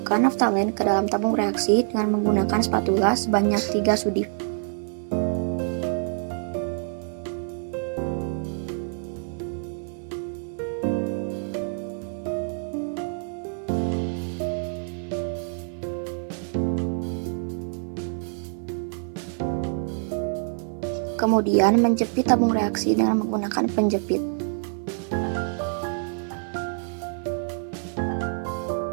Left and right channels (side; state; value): left; silent; 56 dB below the other